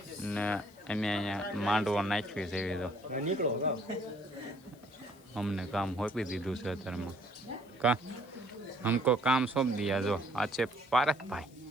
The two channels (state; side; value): noise; left; hiss, 28 dB below the sound